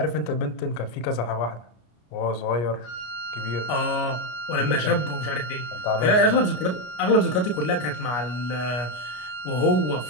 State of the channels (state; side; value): late; right; 33 ms